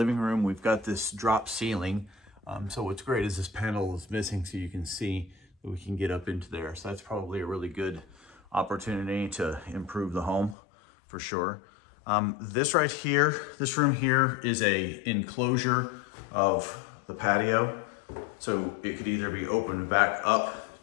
room, we've got this drop ceiling. So what's great is this panel is missing, so you can see that we can get up into there. So that's probably a really good opportunity to improve the home for sure. This room here is a enclosure of the patio. So it could either be opened back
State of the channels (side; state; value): right; drops out; at 10.6 s